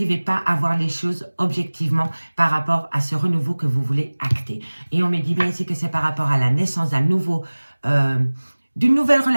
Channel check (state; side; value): inverted; both; correlation -1.00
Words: pas à voir les choses objectivement par rapport à ce renouveau que vous voulez acter. Et on me dit bien ici que c'est par rapport à la naissance d'un d'une nouvelle